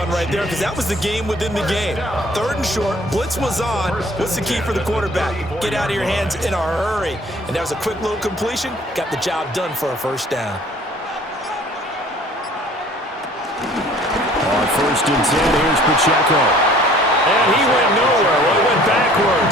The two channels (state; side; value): normal; both; correlation 0.53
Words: right there because that was the game within the game. 3rd and short, blitz was on. What's the key for the quarterback? Get out of your hands in a hurry. And that was a quick little completion. Got the job done for a 1st down. On 1st and 10, here's Pacheco. And he went nowhere. Well, he went